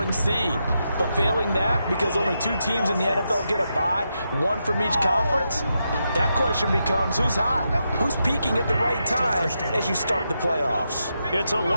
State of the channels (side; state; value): both; inverted; correlation -0.85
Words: seed. But failing that, because only 2 teams in the NFL get a bye, 1 from each conference, that question becomes who's hot? Who's peaking at the right time as you start the playoffs? It's a